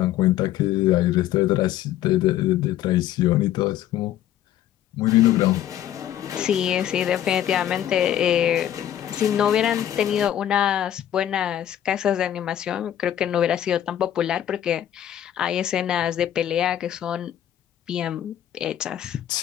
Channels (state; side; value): quieter; right; 11.5 dB